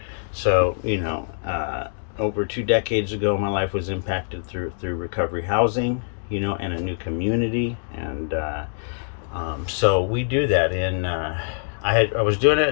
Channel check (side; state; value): right; silent; digital silence